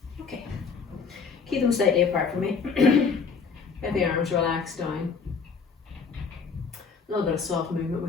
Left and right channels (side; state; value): right; quieter; 5.4 dB